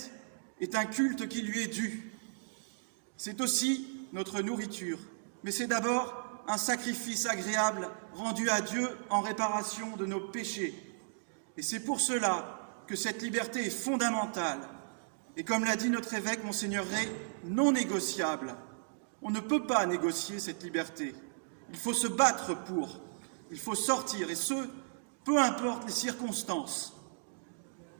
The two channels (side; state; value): left; silent; digital silence